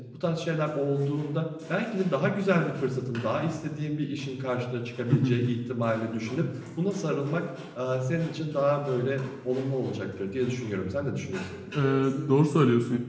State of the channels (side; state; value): both; identical; correlation 1.00